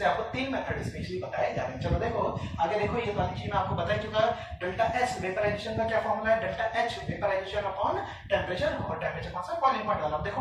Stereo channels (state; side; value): identical; both; correlation 1.00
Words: आपको 3 मेथड स्पेशली बताए जा रहे हैं। चलो देखो आगे, देखो ये वाली चीज मैं आपको बता चुका है। डेल्टा एस वेपराइजेशन का क्या फॉर्मूला है, delta H vaporisation upon temperature, और टेम्परेचर कौन सा, बॉइलिंग पॉइंट वाला। देखो